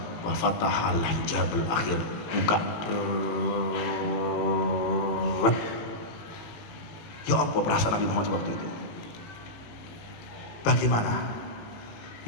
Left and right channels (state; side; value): late; right; 18 ms